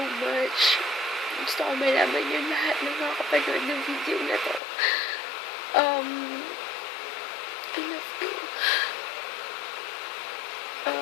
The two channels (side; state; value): right; drops out; at 4.6 s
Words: much. Gusto ko malaman yun lahat ng mga kapanood ng video na to. I love you.